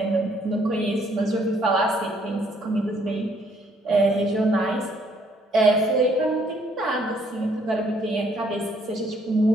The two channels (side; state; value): both; normal; correlation 0.66